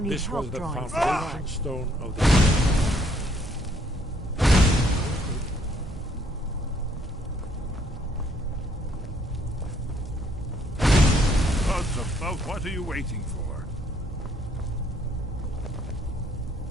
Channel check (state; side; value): normal; both; correlation 0.67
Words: need This help was the drawing foundation stone of the... Gods above, what are you waiting for?